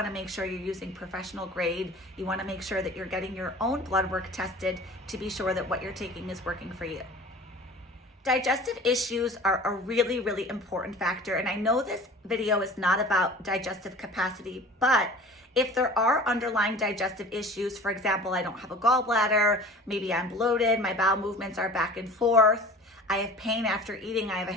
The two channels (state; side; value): normal; both; correlation 0.42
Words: to make sure you're using professional grade. You want to make sure that you're getting your own blood work tested to be sure that what you're taking is working for you. Digestive issues are a really, really important factor. And I know this video is not about digestive capacity, but if there are underlying digestive issues, for example, I don't have a gallbladder, maybe I'm bloated, my bowel movements are back and forth, I have pain after eating, I have a